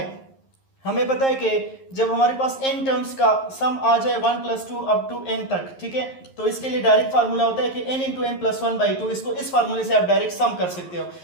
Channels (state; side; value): late; right; 11 ms